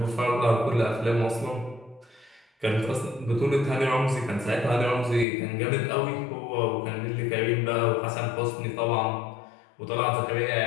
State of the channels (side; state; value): right; drops out; at 5.2 s